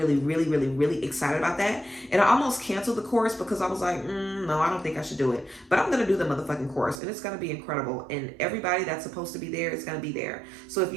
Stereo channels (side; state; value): left; drops out; at 7.0 s